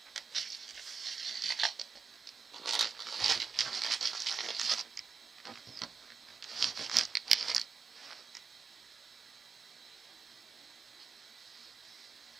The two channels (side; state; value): left; quieter; 5.4 dB